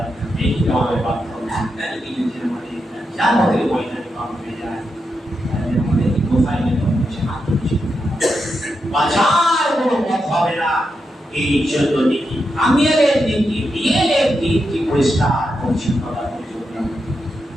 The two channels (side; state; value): both; normal; correlation 0.86